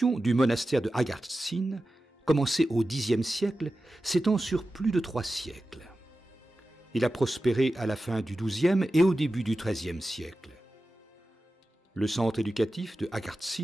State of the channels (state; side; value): normal; both; correlation 0.94